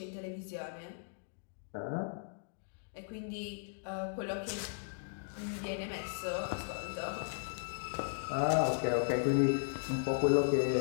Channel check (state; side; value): silent; right; digital silence